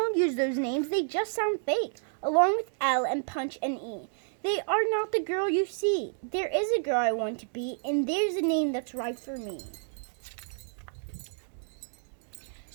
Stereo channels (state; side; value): silent; left; digital silence